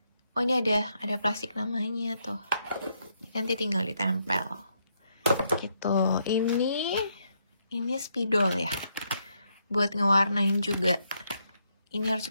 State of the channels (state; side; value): inverted; both; correlation -0.77